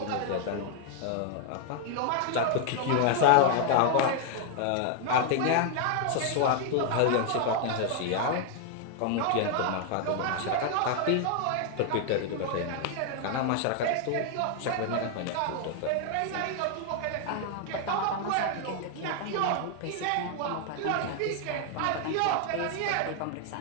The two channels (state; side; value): different; both; correlation 0.00